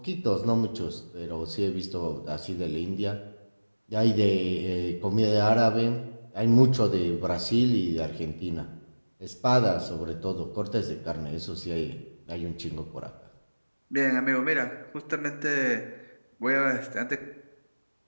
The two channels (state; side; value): inverted; both; correlation -1.00